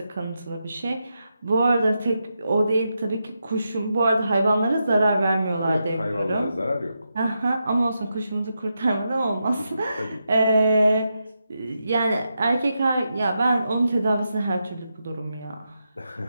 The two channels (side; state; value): both; inverted; correlation -0.86